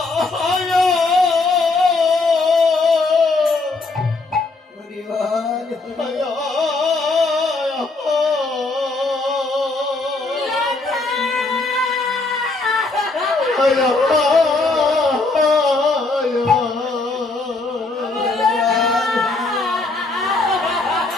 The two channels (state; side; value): quieter; right; 3.5 dB